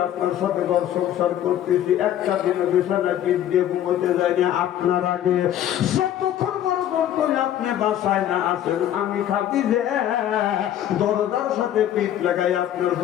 আপনার সাথে ঘর সংসার করতেছি একটা দিনে বিছানায় পিঠ দিয়ে ঘুমোতে যাই না আপনার আগে। যতক্ষণ বড় করে আপনি বাসায় না আসেন আমি খাদিজা দরজার সাথে পিঠ লাগাই আপনার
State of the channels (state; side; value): quieter; right; 11.4 dB